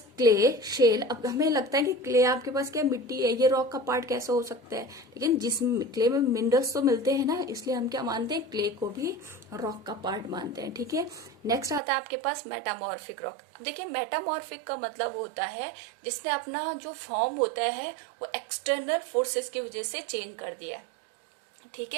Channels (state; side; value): drops out; left; at 11.8 s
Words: क्ले, शेल। अब हमें लगता है कि क्ले आपके पास क्या मिट्टी है, ये रॉक का पार्ट कैसा हो सकता है, लेकिन जिस क्ले में मिनरल्स तो मिलते हैं ना, इसलिए हम क्या मानते हैं, क्ले को भी रॉक का पार्ट मानते हैं। ठीक है, नेक्स्ट आता है आपके पास मेटामॉर्फिक रॉक। अब देखिए मेटामॉर्फिक का मतलब होता है जिसने अपना जो फॉर्म होता है वो एक्सटर्नल फोर्सेस की वजह से चेंज कर दिया। ठीक